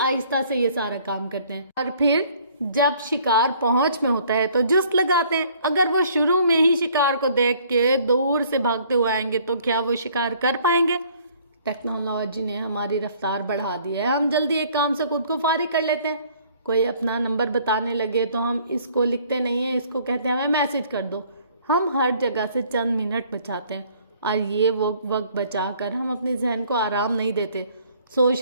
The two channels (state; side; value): inverted; both; correlation -0.59